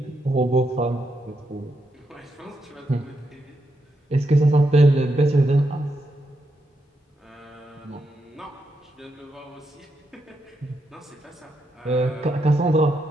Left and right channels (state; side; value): normal; both; correlation 0.82